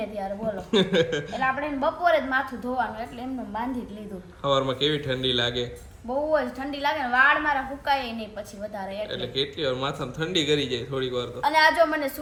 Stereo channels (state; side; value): identical; both; correlation 1.00